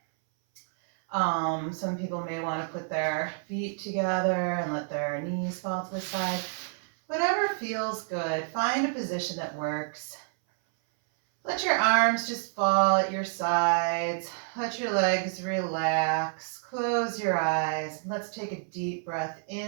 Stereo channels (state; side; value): silent; left; 59 dB below the other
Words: Some people may want to put their feet together and let their knees fall to the side. Whatever feels good. Find a position that works. Let your arms just fall at your sides. Let your legs relax. Close your eyes. Let's take a deep breath